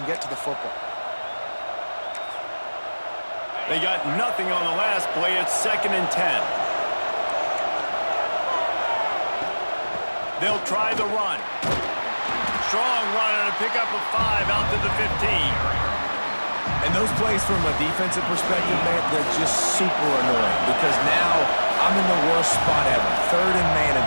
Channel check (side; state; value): both; inverted; correlation -1.00